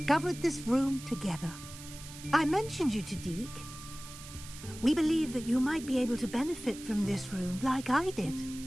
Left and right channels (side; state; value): right; noise; hiss, 14 dB below the sound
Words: this room together. I mentioned you to Deke. We believe that you might be able to benefit from this room like I did.